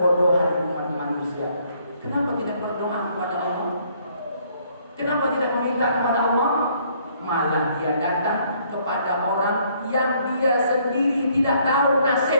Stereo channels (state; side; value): inverted; both; correlation -0.66